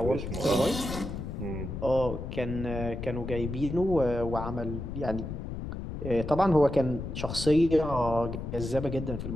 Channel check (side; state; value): left; noise; rumble, 6 dB below the sound